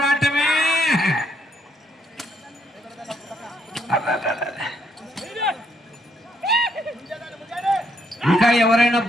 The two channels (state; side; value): normal; both; correlation 0.73